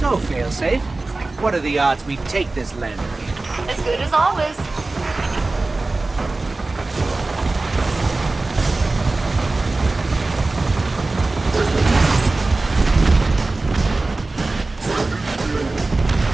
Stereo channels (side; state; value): left; quieter; 3.3 dB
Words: failsafe, what are the odds we take this lander? As good as always.